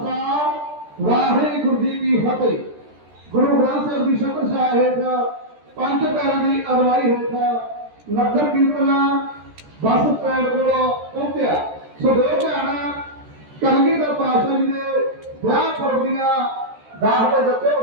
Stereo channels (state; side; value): late; left; 13 ms